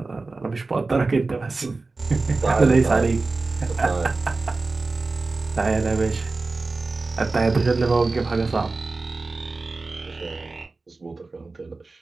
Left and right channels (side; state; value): left; quieter; 3.6 dB